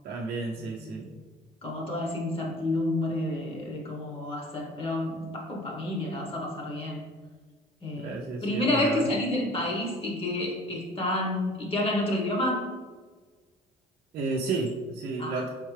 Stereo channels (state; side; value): normal; both; correlation 0.45